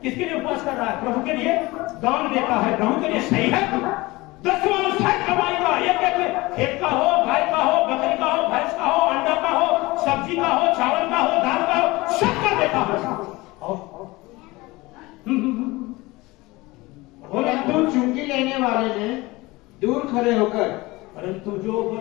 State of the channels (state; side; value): quieter; right; 21.5 dB